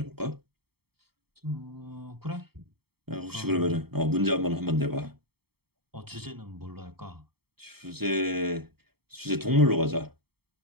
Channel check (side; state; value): left; late; 0.96 ms